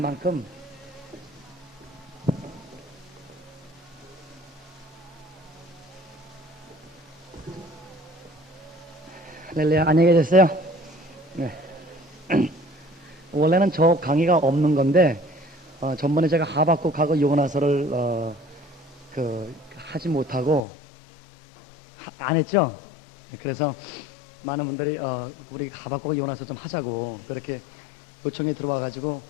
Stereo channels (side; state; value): right; drops out; at 20.7 s